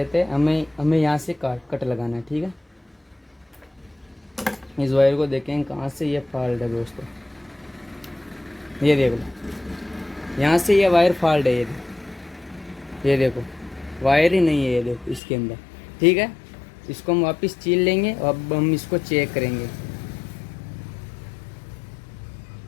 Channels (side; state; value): right; drops out; at 15.2 s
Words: हैं। हमें यहाँ से कट लगाना है। ठीक है, इस वायर को देखें कहाँ से ये फॉल्ट है दोस्तों। ये देख लो, यहाँ से ये वायर फॉल्ट है। ये देखो वायर ही नहीं है, ये देखो इसके अंदर। ठीक है, इसको हम वापस छील लेंगे। अब हम इसको चेक करेंगे।